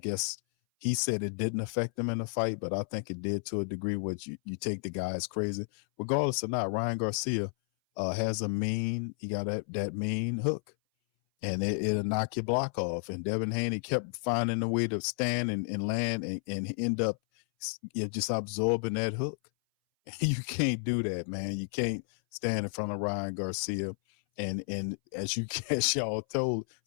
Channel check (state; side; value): silent; right; 57 dB below the other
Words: he said it didn't affect him in the fight, but I think it did to a degree where you take the guy as crazy. Regardless or not, Ryan Garcia has he got that mean hook, and it'll knock your block off. And Devin Haney kept finding a way to stand and land and end up you're just absorbing that hook. You can't do that, man. You can't stand in front of Ryan Garcia and as y'all